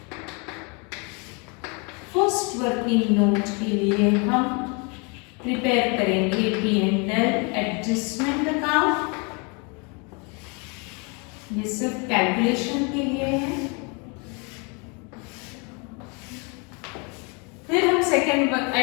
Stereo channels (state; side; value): quieter; right; 32.5 dB